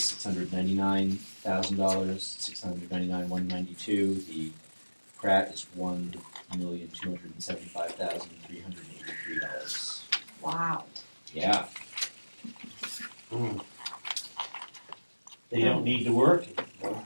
$699,192. The Pratt is $1,275,383. Wow. Yeah. They don't need to work,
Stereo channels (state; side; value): inverted; both; correlation -1.00